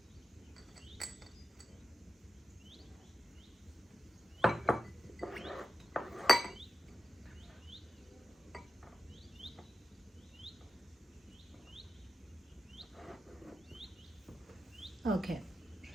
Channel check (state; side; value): normal; both; correlation 0.92